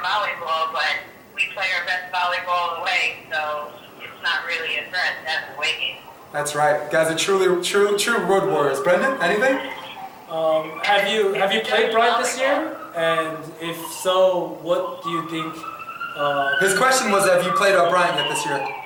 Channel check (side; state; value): both; identical; correlation 1.00